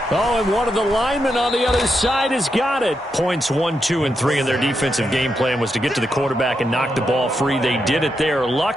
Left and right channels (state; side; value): normal; both; correlation 0.84